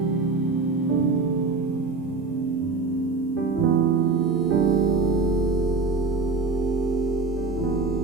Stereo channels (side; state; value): left; quieter; 4.0 dB